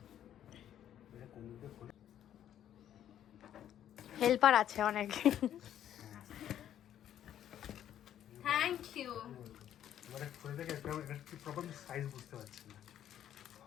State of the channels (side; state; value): right; quieter; 10.7 dB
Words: হেল্পার আছে অনেক। Thank you.